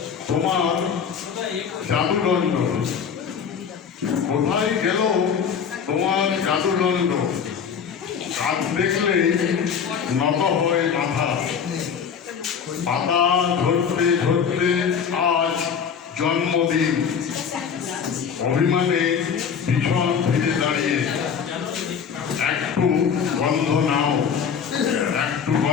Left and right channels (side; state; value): right; quieter; 7.0 dB